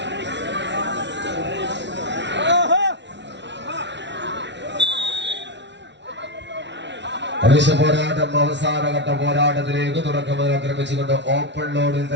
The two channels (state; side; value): late; left; 0.51 ms